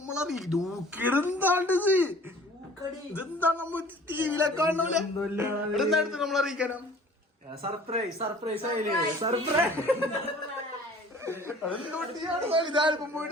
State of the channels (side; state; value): both; normal; correlation 0.49